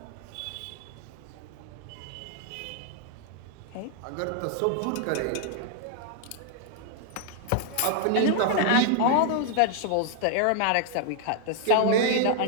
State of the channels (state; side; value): different; both; correlation 0.00